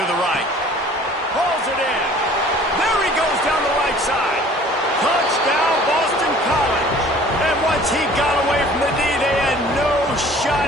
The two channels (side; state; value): both; normal; correlation 0.50